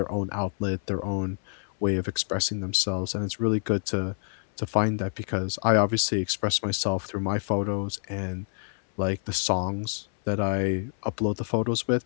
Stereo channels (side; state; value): right; silent; 60 dB below the other